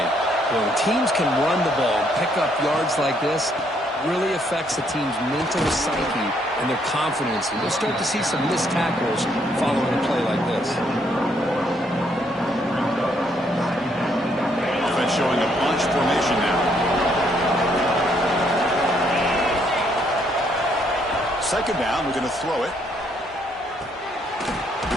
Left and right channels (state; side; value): normal; both; correlation 0.71